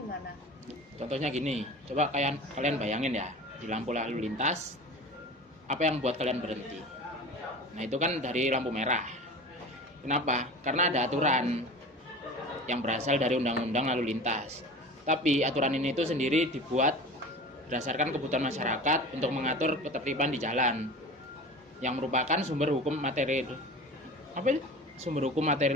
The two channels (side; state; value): both; normal; correlation 0.36